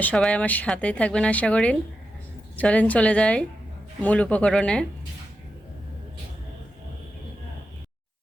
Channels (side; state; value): both; normal; correlation 0.88